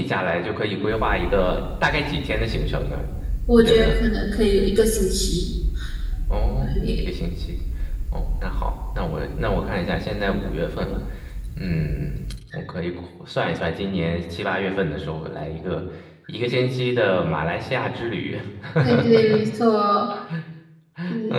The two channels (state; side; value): identical; both; correlation 1.00